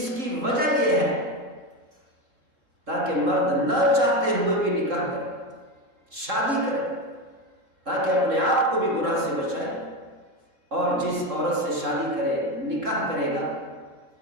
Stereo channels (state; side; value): late; left; 3.7 ms